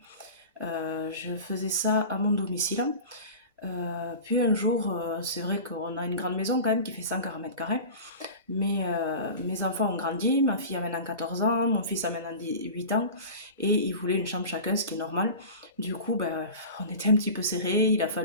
Je faisais ça à mon domicile. Puis un jour, c'est vrai qu'on a une grande maison quand même qui fait 140 mètres carrés. Mais mes enfants ont grandi, ma fille a maintenant 14 ans, mon fils a maintenant 8 ans, et ils voulaient une chambre chacun, ce qui est normal. Du coup, ben, on était un petit peu serrés, il a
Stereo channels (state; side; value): inverted; both; correlation -0.34